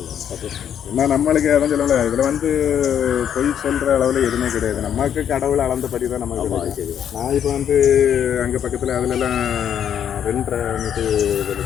ஏன்னா நம்மளுக்கு எதுவும் சொல்லலை, இதில் வந்து பொய் சொல்கிற அளவில் எதுவுமே கிடையாது. நமக்கு கடவுள் அளந்தபடி தான் நமக்கு கிடையாது. நான் இப்போ வந்து அங்கே பக்கத்தில் அதுலலாம் 2.5 மீட்டர்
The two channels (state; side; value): quieter; right; 9.1 dB